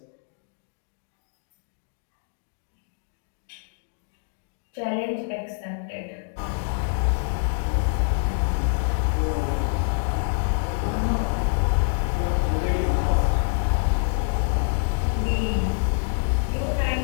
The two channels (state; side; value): silent; right; 61 dB below the other